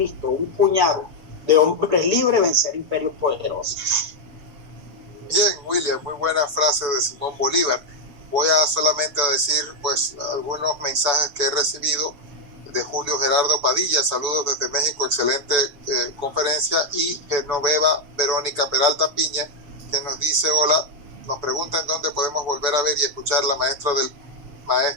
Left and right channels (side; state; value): left; late; 6.9 ms